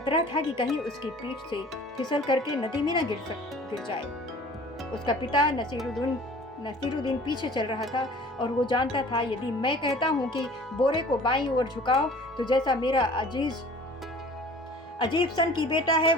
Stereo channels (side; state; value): both; normal; correlation 0.47